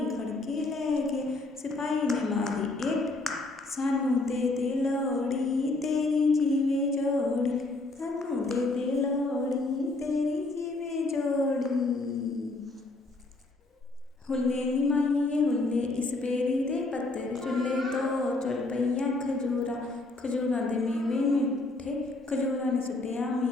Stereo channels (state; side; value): quieter; right; 3.1 dB